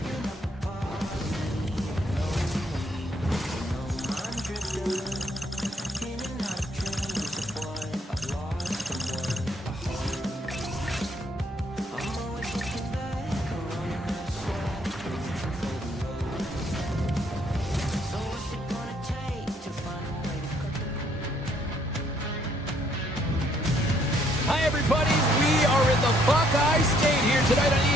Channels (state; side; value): normal; both; correlation 0.68